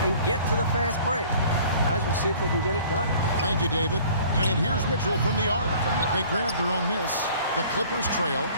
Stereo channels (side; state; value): both; inverted; correlation -0.50